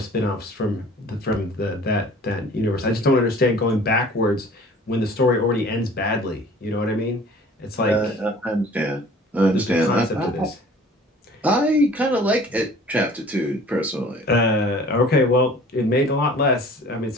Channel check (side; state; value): both; normal; correlation 0.48